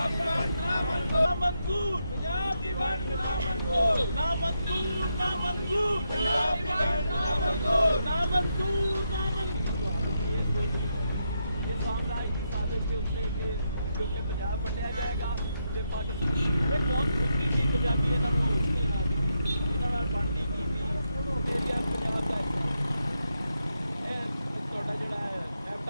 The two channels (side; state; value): both; inverted; correlation -0.82